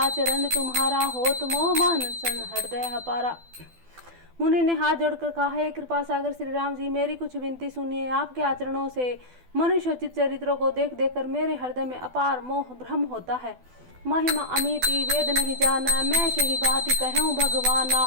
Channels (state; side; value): late; left; 12 ms